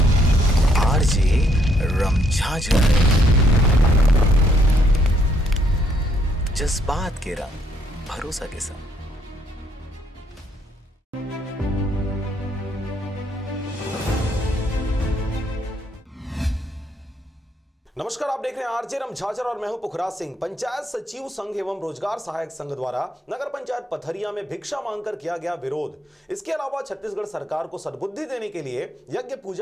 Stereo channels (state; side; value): normal; both; correlation 0.71